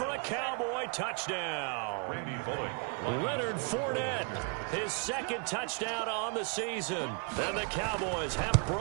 a Cowboy touchdown. Leonard Fournette, his 2nd touchdown on the season. And the Cowboys have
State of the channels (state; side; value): quieter; left; 37.8 dB